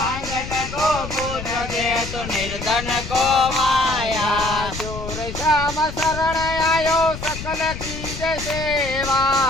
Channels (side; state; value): left; noise; rumble, 9 dB below the sound